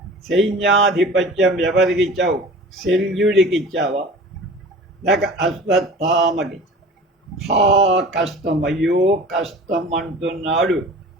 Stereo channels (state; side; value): normal; both; correlation 0.41